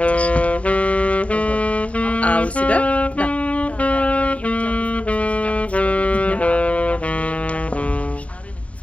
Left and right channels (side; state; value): right; late; 0.066 ms